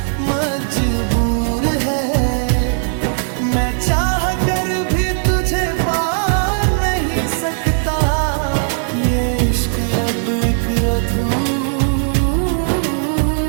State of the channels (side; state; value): left; silent; digital silence